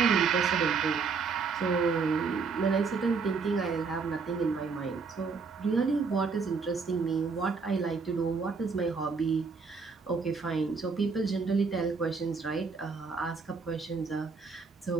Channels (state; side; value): quieter; left; 5.0 dB